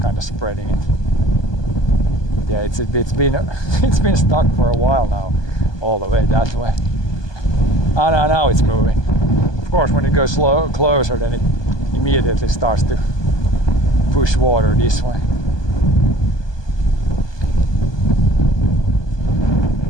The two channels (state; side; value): late; right; 1.2 ms